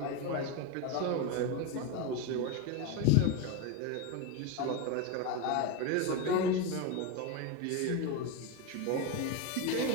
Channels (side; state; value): both; different; correlation 0.03